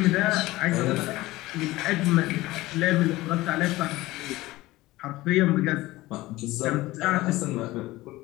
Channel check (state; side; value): quieter; right; 18.5 dB